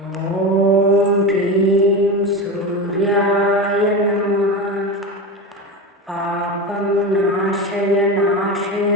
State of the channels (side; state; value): both; normal; correlation 0.22